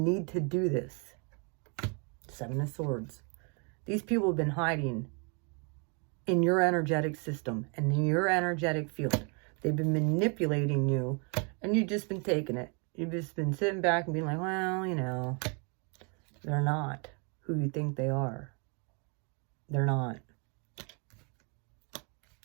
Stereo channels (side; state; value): left; quieter; 35.7 dB